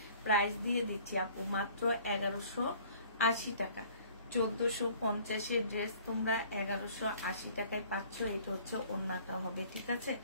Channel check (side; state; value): both; inverted; correlation -0.53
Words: প্রাইস দিয়ে দিচ্ছি আপু মাত্র 1180 টাকা। 1450-এর ড্রেস তোমরা 1180 টাকায় পাচ্ছ। এটা হচ্ছে ওড়নাটা হবে, ঠিক আছে?